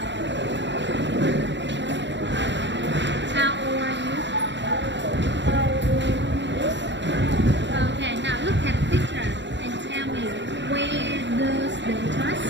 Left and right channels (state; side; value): late; left; 0.53 ms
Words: How old are you? Okay, now look at the picture and tell me where does the trust?